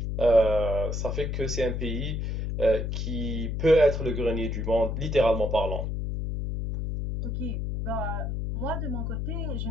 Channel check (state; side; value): noise; left; hum, 2 dB below the sound